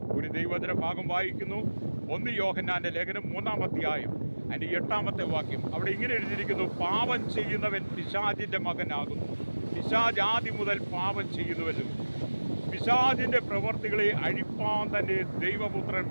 ഒരു ദൈവവചന ഭാഗം വായിക്കുന്നു. 1 യോഹന്നാൻ്റെ ലേഖനം 3-ാം അധ്യായം അതിൻ്റെ 8-ാമത്തെ വാക്യം. അവിടെ ഇങ്ങനെ എഴുതിയിരിക്കുന്നു: പാപം ചെയ്യുന്നവൻ പിശാചിൻ്റെ മകനാകുന്നു. പിശാച് ആദ്യം മുതൽ പാപം ചെയ്യുന്നുവല്ലോ. പിശാചിൻ്റെ പ്രവർത്തികളെ അഴിപ്പാൻ തന്നെ ദൈവപുത്രൻ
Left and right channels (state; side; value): inverted; both; correlation -1.00